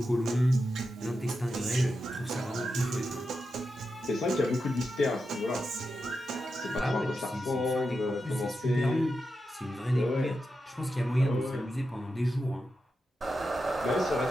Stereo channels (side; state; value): both; normal; correlation 0.89